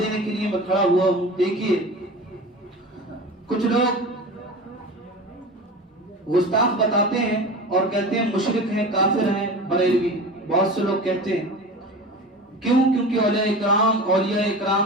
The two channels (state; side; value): normal; both; correlation 0.33